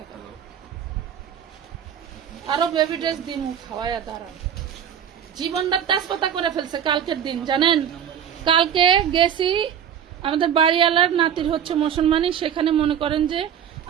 না। আরো বেবি ড্রেস দিয়ে মুখ খাওয়াইয়া দাঁড়ান, জীবনটা তেজপাতা করে ফেলছে। কালকের দিন জানেন, কালকে গেছি আমাদের বাড়িওয়ালার নাতির হচ্ছে মুসলমানি, সেখানে মনে করেন যে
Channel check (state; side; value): quieter; left; 8.9 dB